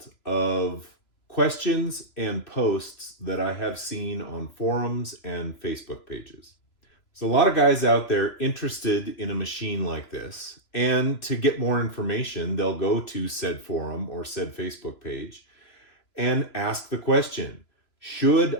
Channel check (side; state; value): right; late; 3.0 ms